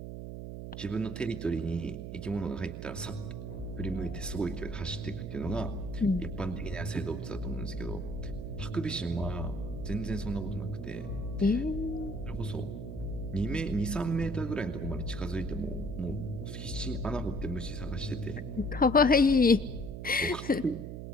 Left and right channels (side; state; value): right; noise; hum, 7 dB below the sound